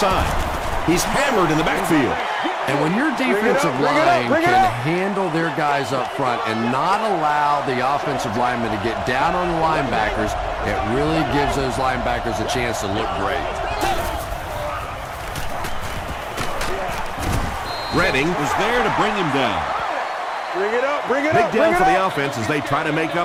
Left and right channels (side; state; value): both; identical; correlation 1.00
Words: He's hammered in the backfield. And when your defensive line can handle their guys up front and not allow the offensive linemen to get down on the linebackers, it really gives those linebackers a chance to look great. Redding was there to bring him down. Bring it up, bring it Big up. down for the offense as they try to make